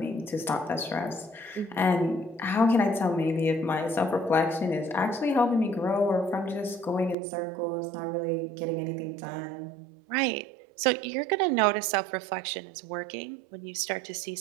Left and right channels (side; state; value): left; drops out; at 7.2 s